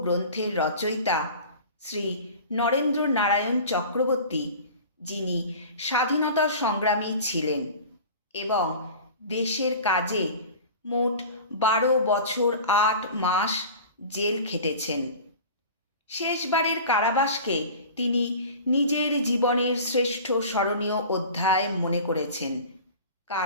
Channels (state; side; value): inverted; both; correlation -0.38